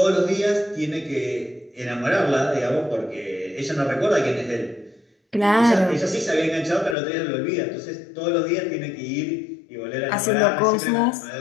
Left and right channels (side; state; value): right; drops out; at 7.0 s